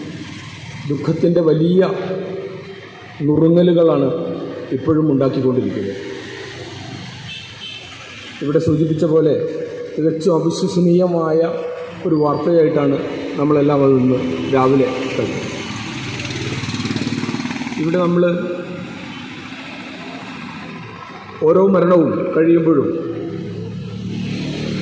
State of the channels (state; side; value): identical; both; correlation 1.00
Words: ദുഃഖത്തിൻ്റെ വലിയ നുറുങ്ങലുകളാണ് ഇപ്പോഴും ഉണ്ടാക്കിക്കൊണ്ടിരിക്കുന്നത്. ഇവിടെ സൂചിപ്പിച്ച പോലെ തികച്ചും അവിശ്വസനീയമായ ഒരു വാർത്തയായിട്ടാണ് നമ്മളെല്ലാം അത് ഇന്ന് രാവിലെ കഴിഞ്ഞത്. ഇവിടെ നമ്മൾ ഓരോ മരണവും കഴിയുമ്പോഴും